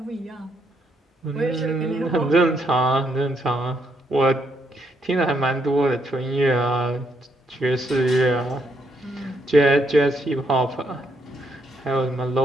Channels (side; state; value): both; normal; correlation 0.75